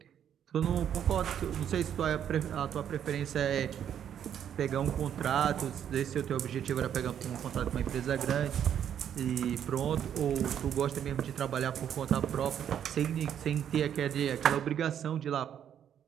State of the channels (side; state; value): left; quieter; 9.4 dB